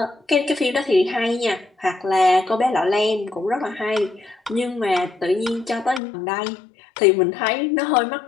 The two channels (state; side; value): drops out; right; at 6.0 s